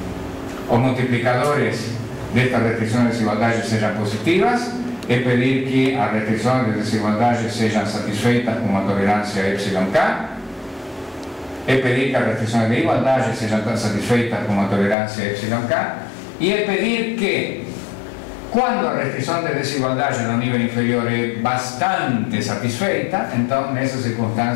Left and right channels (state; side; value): drops out; right; at 15.0 s